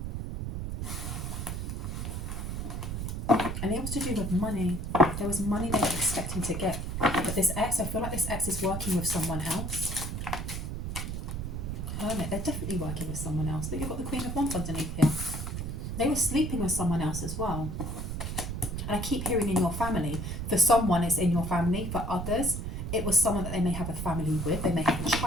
And it was to do with money. There was money they were expecting to get. But this ex, I feel like this ex is working with someone else. Hermit, they're definitely working with someone else. But you've got the Queen of Wands underneath here. They were sleeping with someone else as well. And I keep hearing in your family. For someone, it's in your family. For others, it was someone that they may have a family with. They may have a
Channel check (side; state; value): right; noise; rumble, 4 dB below the sound